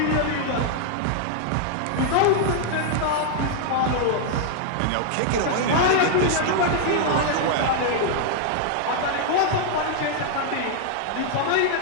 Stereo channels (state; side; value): different; both; correlation 0.00